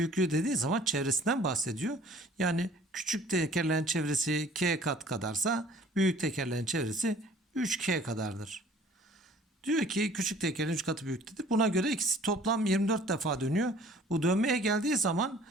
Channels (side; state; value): both; normal; correlation 0.52